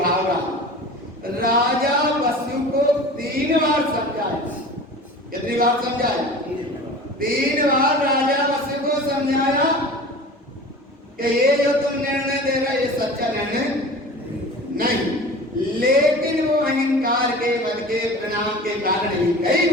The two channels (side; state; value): both; normal; correlation 0.38